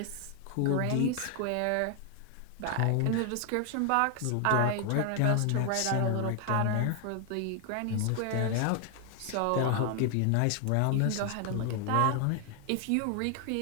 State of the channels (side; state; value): both; different; correlation 0.00